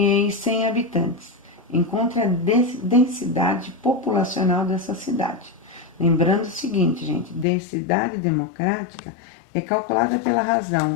habitantes. Encontre a densidade populacional dessa cidade. Lembrando o seguinte, gente, densidade democrática é calculada pela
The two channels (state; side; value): drops out; right; at 7.5 s